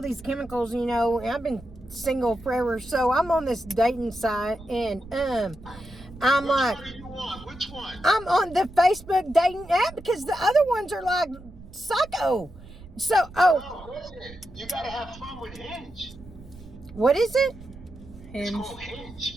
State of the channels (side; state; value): right; noise; rumble, 19 dB below the sound